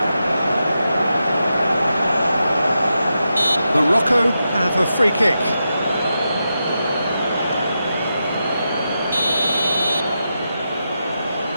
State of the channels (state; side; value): inverted; both; correlation -0.88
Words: Morocco have a free kick.